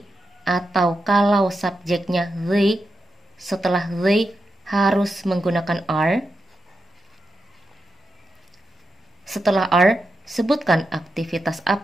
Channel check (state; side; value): normal; both; correlation 0.87